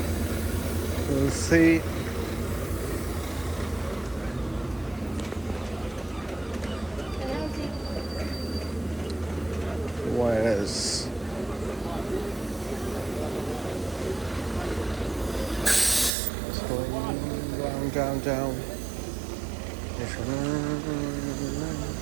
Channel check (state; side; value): drops out; left; at 16.1 s